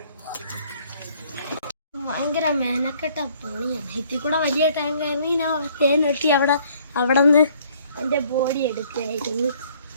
ഭയങ്കര മെനക്കെട്ട പണിയാണ്. ഇതിൽ കൂടെ വലിയ ടാങ്ക് ആയിരുന്നു. ഞാൻ തേൻ വെട്ടി അവിടെ നിന്ന് എൻ്റെ ബോഡി എടുക്കുകയായിരുന്നു.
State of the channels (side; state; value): both; inverted; correlation -0.60